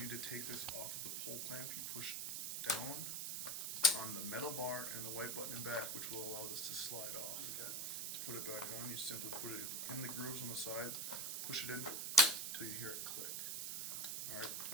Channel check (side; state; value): right; noise; hiss, 1 dB below the sound